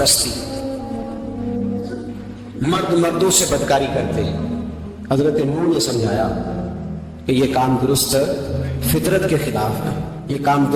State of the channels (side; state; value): both; identical; correlation 1.00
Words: مرد مردوں سے بدکاری کرتے ہیں. حضرت نوح نے سمجھایا کہ یہ کام درست فطرت کے خلاف ہے, یہ کام